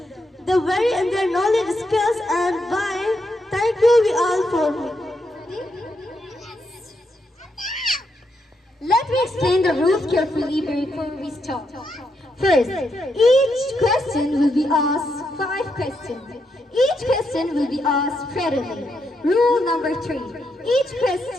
They vary in their knowledge, skills, and why. Thank you, we all for me. Let me explain the rules carefully before we start. First, each question will be asked 5 questions. Each question will be asked prettily. Rule number 3. Each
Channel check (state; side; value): normal; both; correlation 0.81